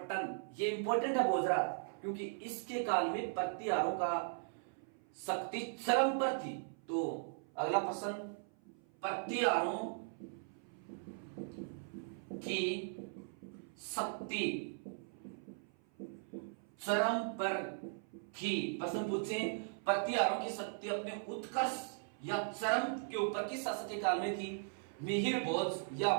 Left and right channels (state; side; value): silent; left; 52 dB below the other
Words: ये इंपॉर्टेंट है भोजराज, क्योंकि इसके काल में प्रतिहारों का शक्ति चरम पर थी। तो अगला प्रश्न, प्रतिहारों की शक्ति चरम पर थी। प्रश्न पूछे, प्रतिहारों की शक्ति अपने उत्कर्ष या चरम के ऊपर किस शासक के काल में थी? मिहिर भोज या